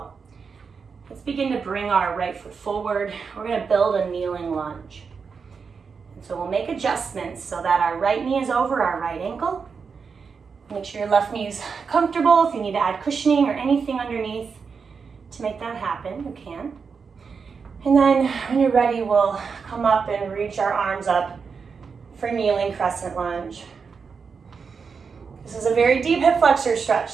Let's begin to bring our right foot forward. We're going to build a kneeling lunge. And so we'll make adjustments so that our right knee is over our right ankle. Make sure your left knee is comfortable. If you need to add cushioning or anything underneath to make that happen, you can. And then when you're ready, we'll come up and reach our arms up for kneeling crescent lunge. This is a very deep hip flexor stretch,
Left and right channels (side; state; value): left; quieter; 5.5 dB